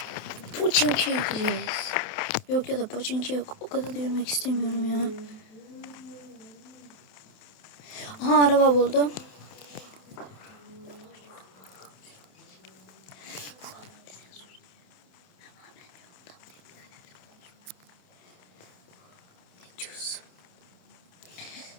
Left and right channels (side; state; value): right; late; 27 ms